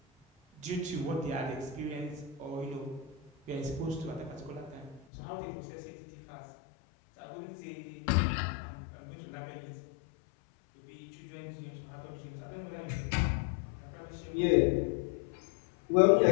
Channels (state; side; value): drops out; right; at 5.0 s